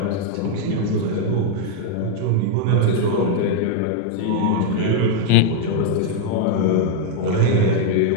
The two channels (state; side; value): different; both; correlation 0.00